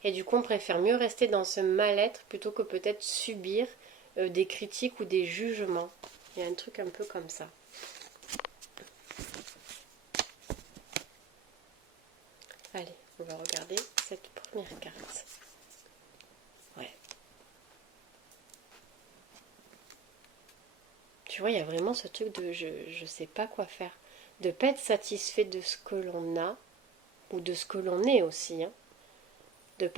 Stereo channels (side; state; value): left; quieter; 5.8 dB